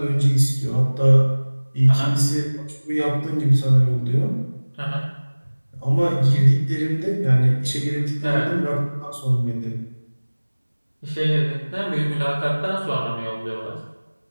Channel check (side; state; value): both; inverted; correlation -1.00